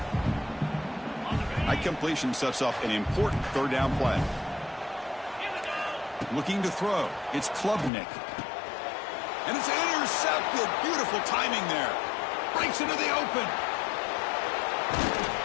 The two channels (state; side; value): drops out; right; at 7.9 s